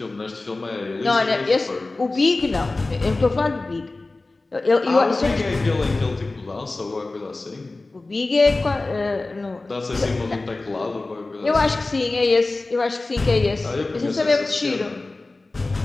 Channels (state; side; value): quieter; right; 3.2 dB